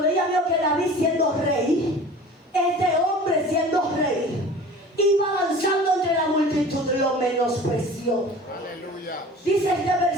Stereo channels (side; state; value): both; normal; correlation 0.41